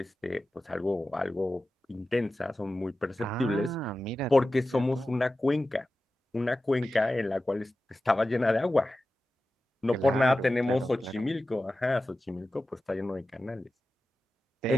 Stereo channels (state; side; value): normal; both; correlation 0.94